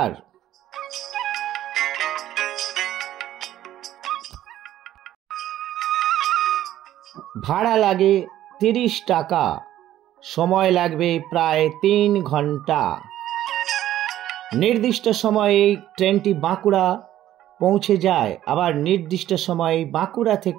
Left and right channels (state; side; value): quieter; left; 12.9 dB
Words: ভাড়া লাগে 30 টাকা। সময় লাগবে প্রায় 3 ঘন্টা। নির্দিষ্ট সময়ে ট্রেনটি বাঁকুড়া পৌঁছে যায়, আবার নির্দিষ্ট সময়ে বাঁকুড়া